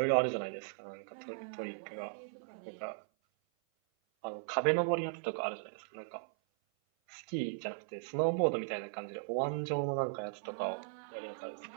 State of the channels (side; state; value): left; silent; 53 dB below the other